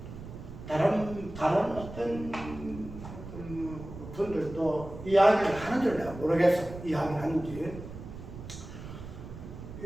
다른 어떤 분들도 이야기를 하는 줄 내가 모르겠어. 이야기를 하는지.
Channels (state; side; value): noise; right; rumble, 12 dB below the sound